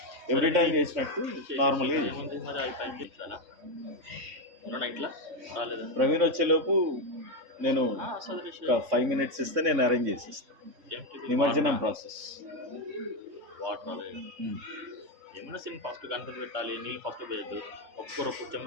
ఎవ్రీ టైం చేసినట్టు నార్మల్గా. ప్రవీణ్ వచ్చేలోపు నేను ఒక 5 minutes ఇస్తే నేను అరేంజ్ చేసేస్తాను నిమజ్జనం ప్రాసెస్. ఏమైనా సీన్ ఫస్ట్ కన్ఫర్మ్ పెట్టాలి. నీళ్ళు ఫస్ట్ పోయద్దు, ఒక్కొక్కరు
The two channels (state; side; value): late; left; 3.6 ms